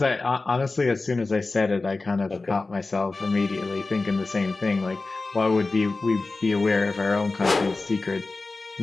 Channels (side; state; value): right; quieter; 3.5 dB